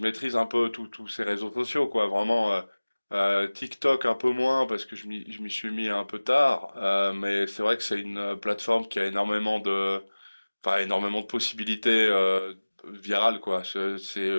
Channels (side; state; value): both; inverted; correlation -1.00